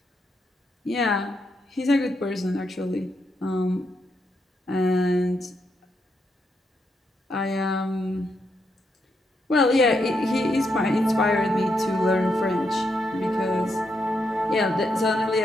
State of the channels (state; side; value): normal; both; correlation 0.81